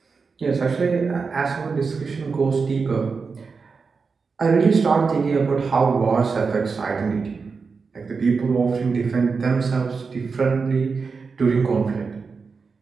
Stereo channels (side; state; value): left; quieter; 4.9 dB